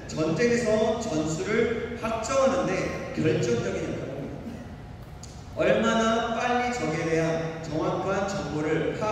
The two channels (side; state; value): both; identical; correlation 1.00